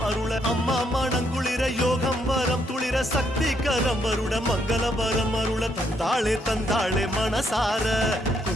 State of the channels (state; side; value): normal; both; correlation 0.74